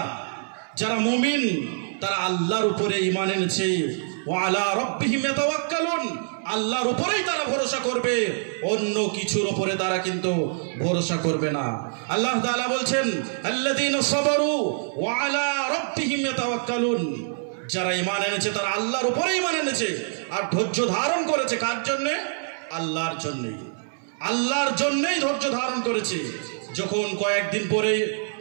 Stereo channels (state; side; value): silent; left; 62 dB below the other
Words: যারা মুমিন, তারা আল্লাহর উপরে ঈমান এনেছে। ওয়া আলা রাব্বিহিম ইয়াতাওয়াক্কালুন, আল্লাহর উপরেই তারা ভরসা করবে, অন্য কিছুর উপরে তারা কিন্তু ভরসা করবে না। আল্লাহ তাআলা বলছেন আল্লাযীনা সাবারু ওয়া আলা রাব্বিহিম ইয়াতাওয়াক্কালুন, যারা ঈমান এনেছে তারা আল্লাহর উপরে ঈমান এনেছে আর ধৈর্য ধারণ করেছে। কার জন্যে? আল্লাহর জন্যই। আল্লাহর জন্যই ধৈর্য ধারণ করেছে। যখন কয়েকদিন পরে